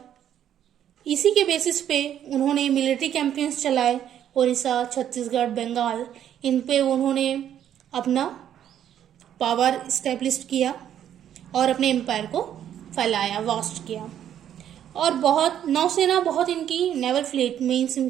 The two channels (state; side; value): quieter; left; 10.2 dB